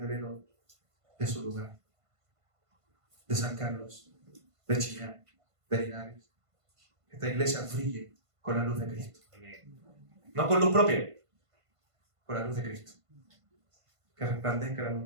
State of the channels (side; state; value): left; late; 1.5 ms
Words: de su lugar, de San Carlos, de Chillán, de Linares. Que esta iglesia brille con la luz de Cristo. No con luz propia, con la luz de Cristo. Que resplandezca la luz